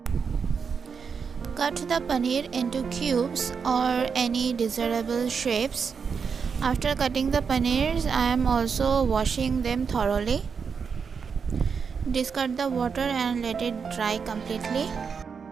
Cut the paneer into cubes or any desirable shapes. After cutting the paneers, I am also washing them thoroughly. Discard the water and let it dry completely.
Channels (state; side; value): quieter; left; 6.0 dB